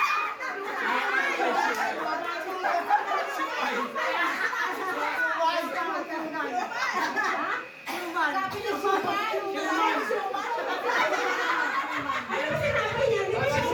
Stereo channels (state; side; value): identical; both; correlation 1.00